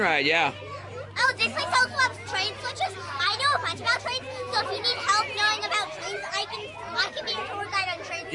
yeah. Oh, this place also has train switches. I know a bunch about trains, so if you need help knowing about trains, I can be your tour guide on trains.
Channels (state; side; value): identical; both; correlation 1.00